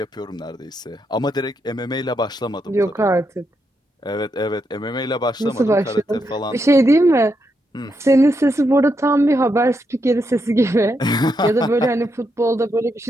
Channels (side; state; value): both; normal; correlation 0.82